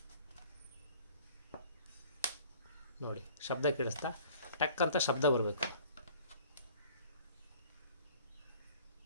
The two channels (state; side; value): inverted; both; correlation -0.51